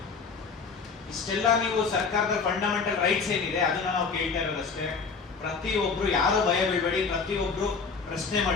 ಇಷ್ಟೆಲ್ಲ ನೀವು ಸರ್ಕಾರದ ಫಂಡಮೆಂಟಲ್ ರೈಟ್ಸ್ ಏನಿದೆ ಅದನ್ನ ನಾವು ಕೇಳ್ತಾ ಇರೋದಷ್ಟೇ. ಪ್ರತಿಯೊಬ್ರು ಯಾರು ಭಯ ಬೀಳ್ಬೇಡಿ, ಪ್ರತಿಯೊಬ್ರು ಪ್ರಶ್ನೆ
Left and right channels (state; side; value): quieter; right; 5.0 dB